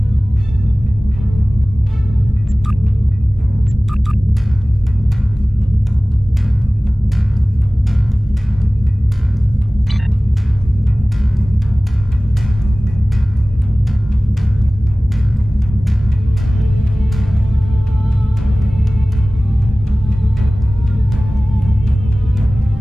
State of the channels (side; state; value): both; normal; correlation 0.98